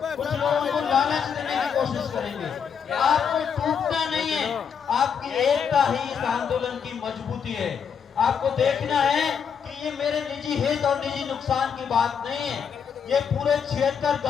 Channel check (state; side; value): quieter; right; 7.1 dB